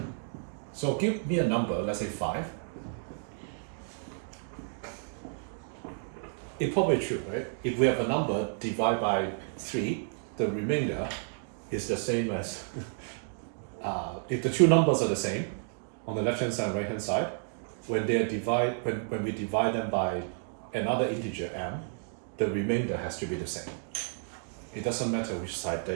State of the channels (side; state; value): left; silent; 57 dB below the other